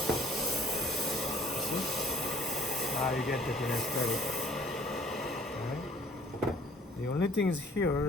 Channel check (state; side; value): normal; both; correlation 0.56